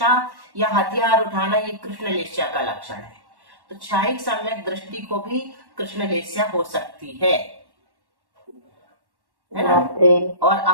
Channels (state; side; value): late; left; 1.1 ms